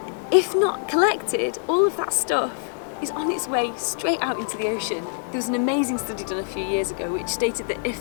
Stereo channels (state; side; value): silent; right; 60 dB below the other